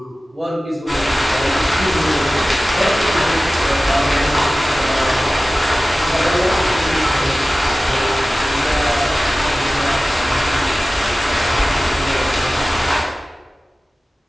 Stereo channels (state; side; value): normal; both; correlation 0.96